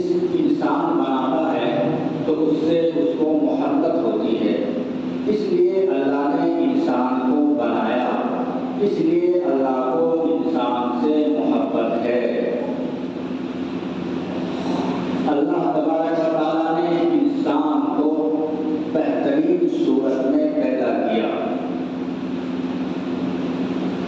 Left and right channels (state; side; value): identical; both; correlation 1.00